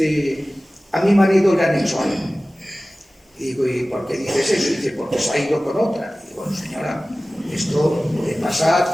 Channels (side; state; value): both; normal; correlation 0.97